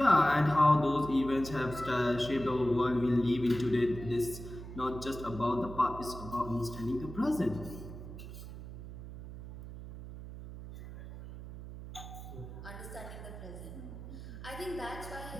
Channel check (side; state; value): right; noise; hum, 11 dB below the sound